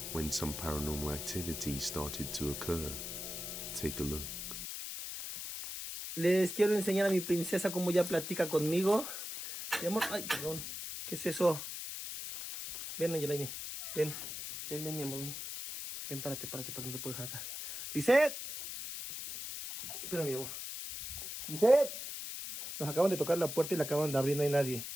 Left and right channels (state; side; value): noise; left; hiss, 7 dB below the sound